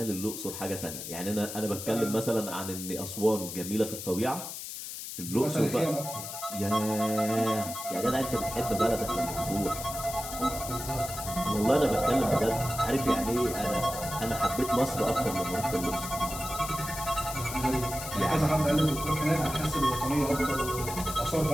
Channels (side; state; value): left; noise; hiss, 8 dB below the sound